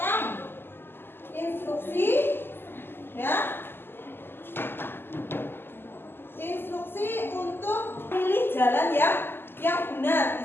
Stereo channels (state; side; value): late; right; 0.10 ms